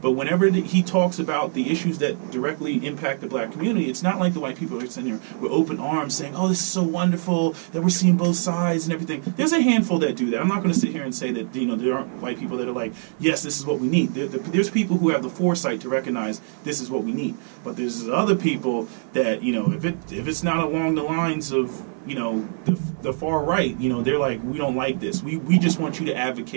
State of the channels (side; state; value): left; silent; digital silence